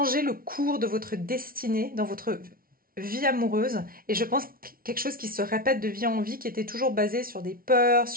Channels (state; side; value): late; left; 0.43 ms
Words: le cours de votre destinée dans votre vie amoureuse. Et je pense quelque chose qui se répète de vie en vie, qui était toujours basé sur des peurs,